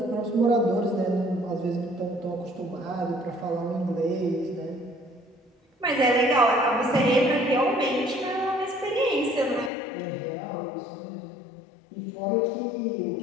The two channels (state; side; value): drops out; right; at 9.7 s